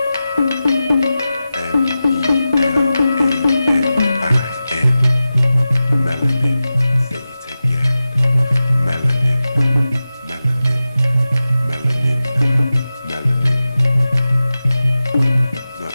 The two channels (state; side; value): inverted; both; correlation -0.94